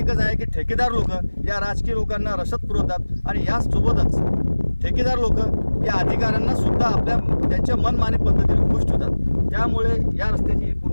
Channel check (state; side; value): inverted; both; correlation -1.00